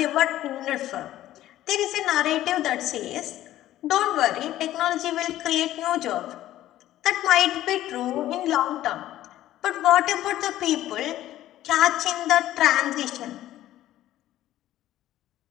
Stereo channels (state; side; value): quieter; right; 13.8 dB